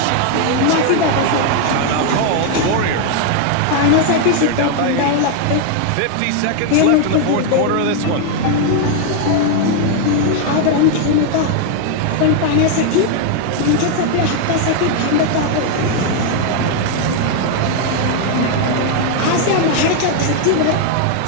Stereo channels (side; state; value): both; different; correlation 0.00